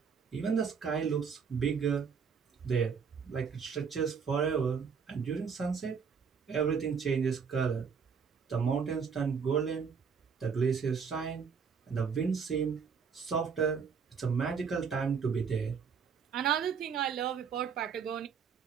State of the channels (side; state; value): left; quieter; 6.2 dB